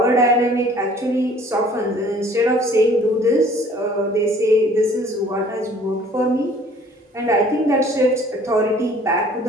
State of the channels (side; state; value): both; normal; correlation 0.54